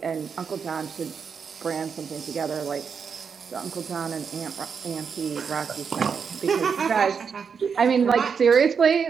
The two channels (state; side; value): quieter; left; 6.3 dB